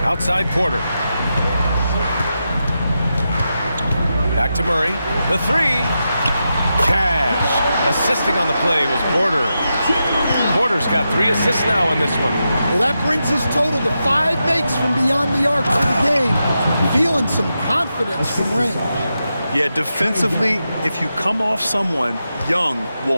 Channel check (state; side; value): inverted; both; correlation -0.88